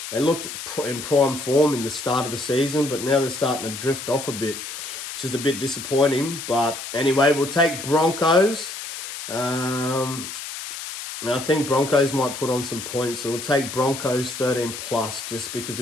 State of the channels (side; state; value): left; noise; hiss, 8 dB below the sound